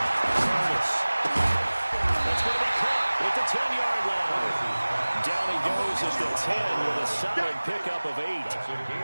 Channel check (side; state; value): both; inverted; correlation -1.00